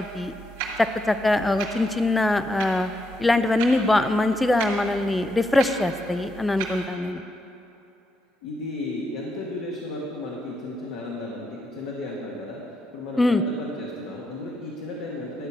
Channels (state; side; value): normal; both; correlation 0.81